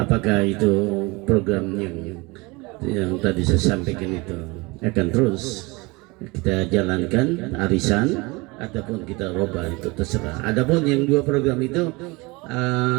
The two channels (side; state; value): left; quieter; 24.9 dB